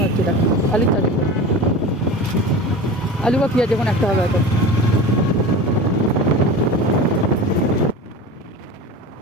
হচ্ছে, এটা আলুর চাষ। আলু বা পেঁয়াজ যখন একটা হবে হয়তো।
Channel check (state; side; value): normal; both; correlation 0.32